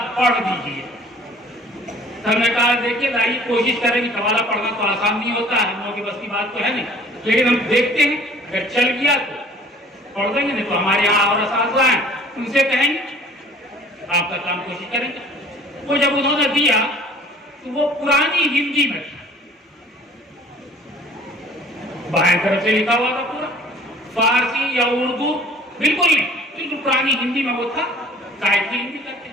پڑھ دیجئے. ہم نے کہا دیکھیے لائیے، کوشش کریں گے، قوالہ پڑھنا تو آسان نہیں ہوتا ہے، ہم لوگوں کی بس کی بات تو ہے نہیں، لیکن ہم دیکھتے ہیں اگر چل گیا تو پڑھ دیں گے، نہیں تو ہمارے یہاں اور اساتذہ ہیں ان سے کہیں گے، آپ کا کام کوشش کریں گے. وہ جب انہوں نے دیا تو وہ پرانی ہندی میں تھا، بائیں طرف سے لکھا ہوا تھا پورا، فارسی یا اردو بالکل نہیں، بالکل پرانی ہندی میں وہ تھا، قائد کی ہندی کرتے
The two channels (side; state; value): both; normal; correlation 0.50